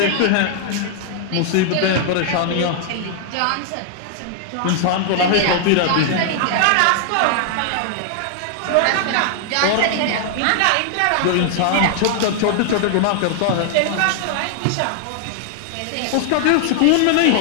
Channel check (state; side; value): different; both; correlation 0.00